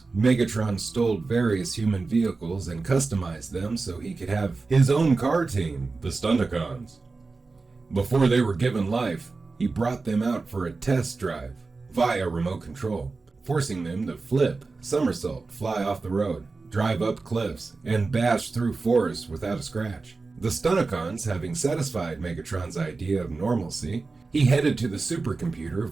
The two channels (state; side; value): quieter; left; 3.9 dB